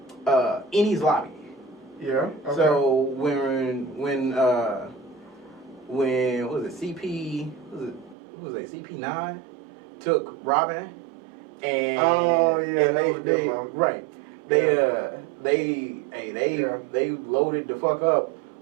Eni's lobby. Yeah. Okay. So when what was it, CP9 took Robin and they loaded the fuck up.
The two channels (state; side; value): drops out; left; at 8.2 s